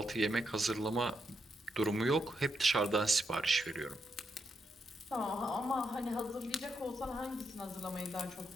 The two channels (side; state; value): both; normal; correlation 0.81